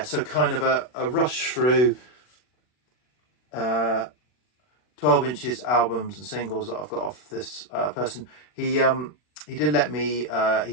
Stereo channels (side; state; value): right; late; 40 ms